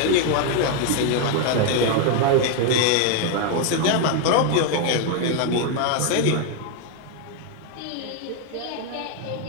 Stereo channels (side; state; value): both; different; correlation 0.01